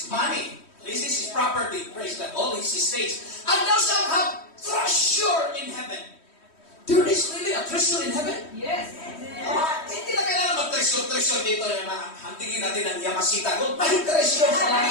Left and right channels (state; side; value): late; right; 3.1 ms